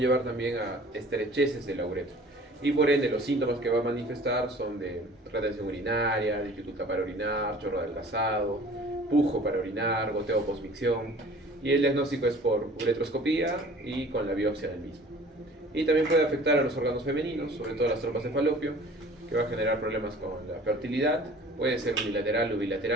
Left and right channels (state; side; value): normal; both; correlation 0.48